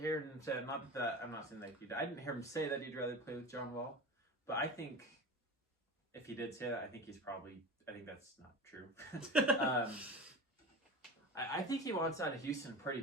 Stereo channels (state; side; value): normal; both; correlation 0.31